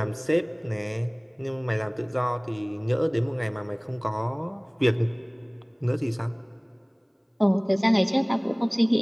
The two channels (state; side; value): identical; both; correlation 1.00